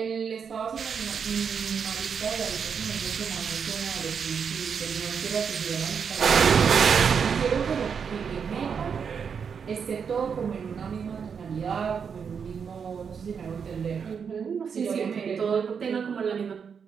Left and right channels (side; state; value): left; quieter; 6.6 dB